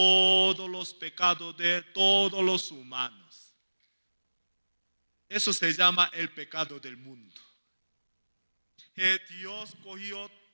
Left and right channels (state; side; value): inverted; both; correlation -1.00